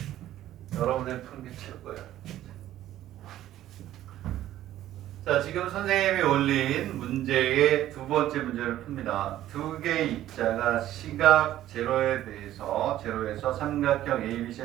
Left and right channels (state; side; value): quieter; left; 13.2 dB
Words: 여러분들이 푸는 게 최고예요. 자, 지금 선생님이 올린 문제의 두 번째 문제를 풉니다. 두 개의 입자가 시각 제로에서 삼각형